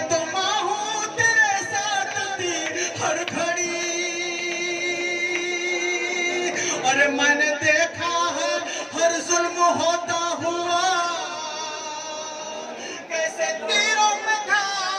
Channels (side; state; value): both; identical; correlation 1.00